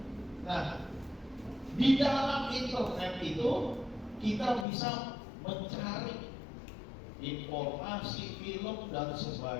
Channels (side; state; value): right; drops out; at 4.7 s